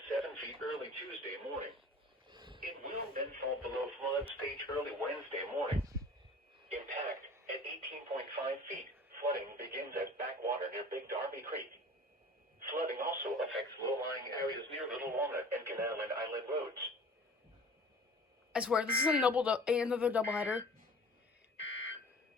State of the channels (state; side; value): normal; both; correlation 0.44